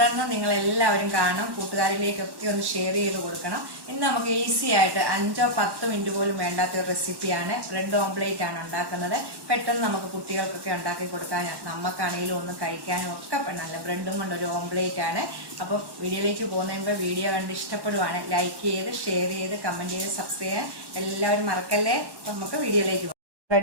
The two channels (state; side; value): late; left; 1.1 ms